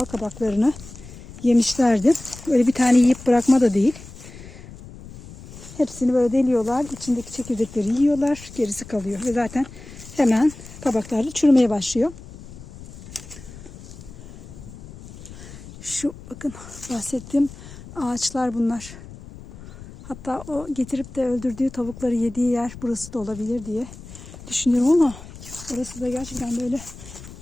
kabaklarını yemişlerdi. Öyle bir tane yiyip bırakma da değil. Hepsini böyle deliyorlar. İçindeki çekirdekleri yiyorlar. Gerisi kalıyor. Ve zaten hemen kabaklarda çürümeye başlıyor. Şu bakın bahsettiğim ağaçlar bunlar. Hatta o getirip de öldürdüğü tavukları yediği yer burası da olabilir diye düşünüyorum ama orası da gerçekten böyle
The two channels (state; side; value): noise; left; rumble, 16 dB below the sound